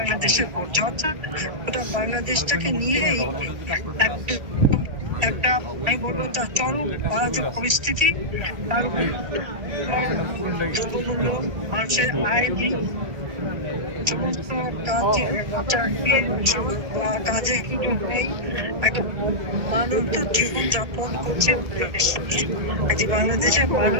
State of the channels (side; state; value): left; late; 1.9 ms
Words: ঘটছে, অর্থাৎ ওটা বাংলাদেশটাকে নিয়েই একটা আমি বলবো তার চরম অরাজক পরিস্থিতি। তার উপর দ্রব্যমূল্য, মানুষের আয়, সমস্ত কাজে কিন্তু নেই, একটা মানুষ তো জীবন যাপন করছে। বাংলাদেশের